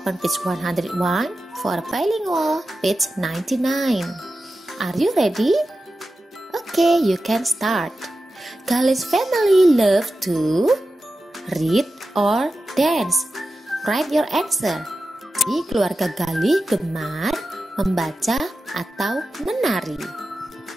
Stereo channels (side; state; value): both; normal; correlation 0.93